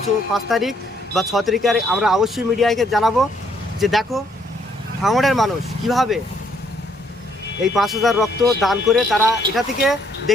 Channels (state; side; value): normal; both; correlation 0.68